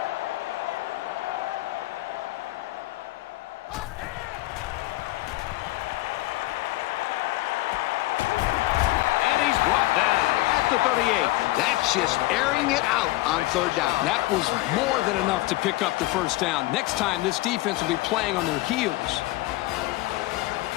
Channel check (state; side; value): quieter; right; 18.8 dB